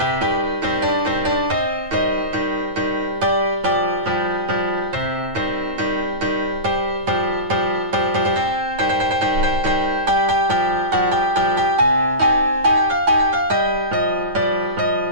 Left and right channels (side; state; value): left; late; 9.1 ms